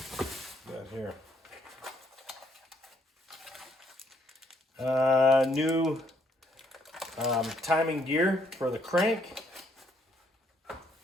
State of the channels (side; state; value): both; normal; correlation 0.70